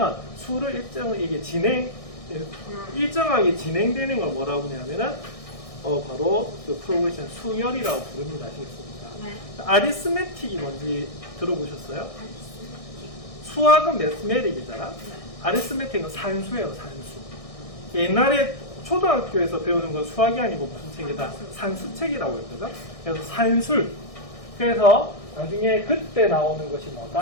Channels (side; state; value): right; late; 1.6 ms